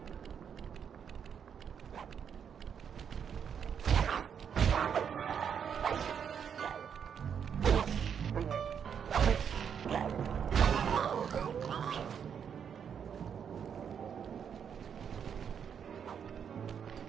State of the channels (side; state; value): left; quieter; 7.7 dB